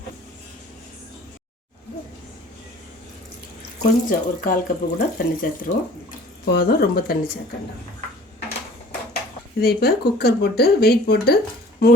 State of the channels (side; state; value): both; normal; correlation 0.50